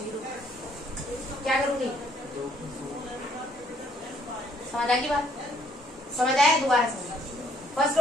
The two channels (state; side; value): normal; both; correlation 0.65